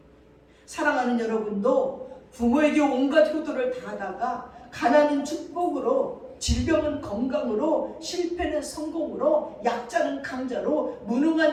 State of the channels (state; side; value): identical; both; correlation 1.00